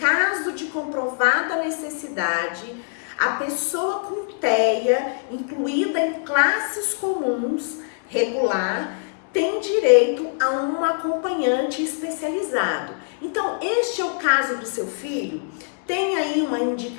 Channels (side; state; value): right; silent; digital silence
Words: de comprovada necessidade, a pessoa com TEA, incluída em classes comuns regular, tem direito a um acompanhante especializado. Então, este é o caso do seu filho? Tem aí uma